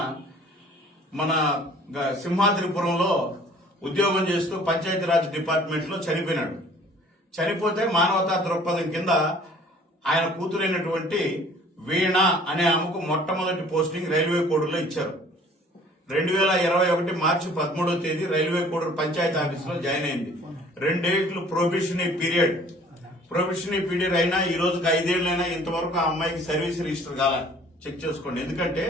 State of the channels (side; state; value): both; normal; correlation 0.53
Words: మన సింహాద్రిపురంలో ఉద్యోగం చేస్తూ పంచాయతీరాజ్ డిపార్ట్మెంట్ లో చనిపోయినాడు. చనిపోతే మానవతా దృక్పథం కింద ఆయన కూతురైనటువంటి వీణ అనే ఆమెకు మొట్టమొదటి పోస్టింగ్ రైల్వే కోడూరులో ఇచ్చారు. 2021 మార్చి 13వ తేదీ రైల్వే కోడూరు పంచాయతీ ఆఫీసులో జాయిన్ అయింది. 2 ఏళ్లు ప్రొబేషనరీ పీరియడ్ అయినా ఈ రోజుకి 5 ఏళ్లైనా ఇంతవరకు ఆ అమ్మాయికి సర్వీస్ రిజిస్టర్ కాల చెక్ చేసుకోండి. ఎందుకంటే